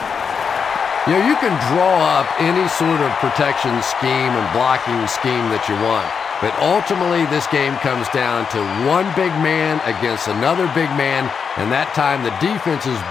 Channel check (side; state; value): right; quieter; 6.3 dB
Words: You know, you can draw up any sort of protection scheme and blocking scheme that you want. But ultimately, this game comes down to one big man against another big man. And that time, the defense's